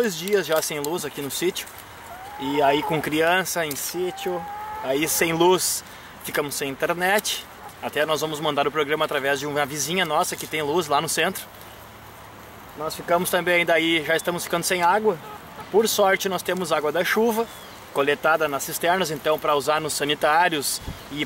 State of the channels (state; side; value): identical; both; correlation 1.00